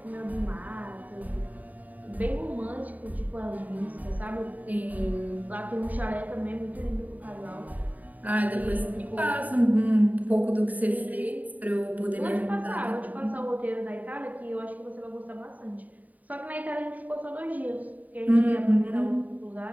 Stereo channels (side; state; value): left; late; 0.076 ms